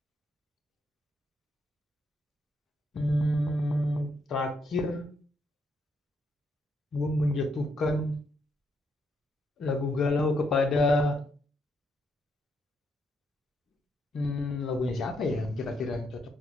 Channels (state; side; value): normal; both; correlation 0.77